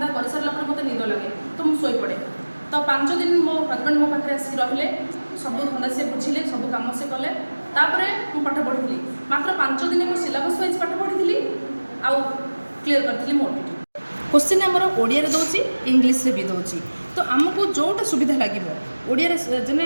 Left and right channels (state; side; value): inverted; both; correlation -1.00